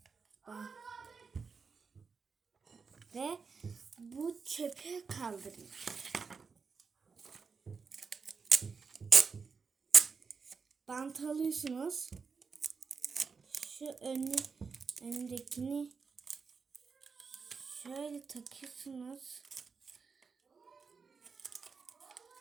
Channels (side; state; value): left; quieter; 5.2 dB